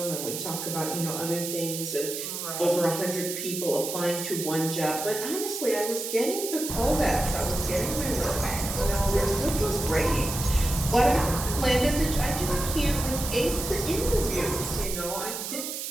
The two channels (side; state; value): right; noise; hiss, 5 dB below the sound